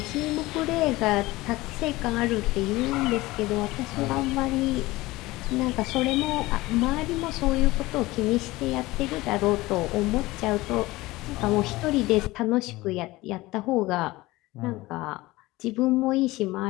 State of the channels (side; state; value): right; quieter; 19.7 dB